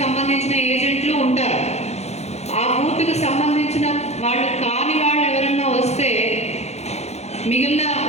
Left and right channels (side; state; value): right; late; 0.31 ms